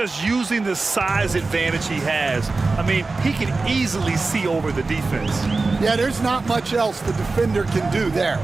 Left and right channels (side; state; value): left; quieter; 3.7 dB